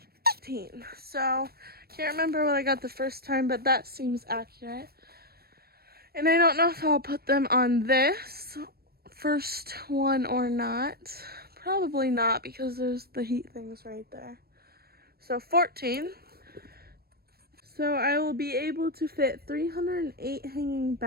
15. So, can't remember what I got the first time, but that seems accurate. And I don't know if I'll put them on this first one or not. Probably not, because there's the heat things right there. So 14. So I will be able to fit 308 hanging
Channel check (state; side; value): late; left; 0.45 ms